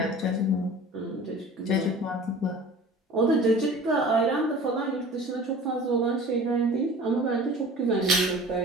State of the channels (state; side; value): normal; both; correlation 0.42